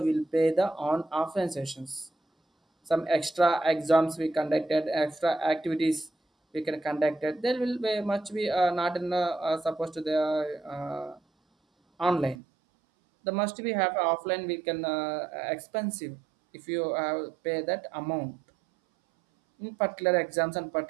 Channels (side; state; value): left; drops out; at 12.4 s